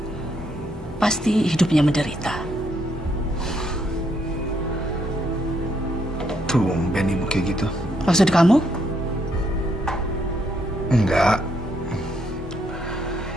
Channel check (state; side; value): normal; both; correlation 0.74